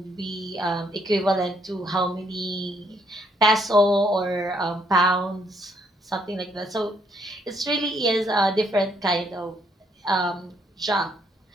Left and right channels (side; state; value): both; normal; correlation 0.71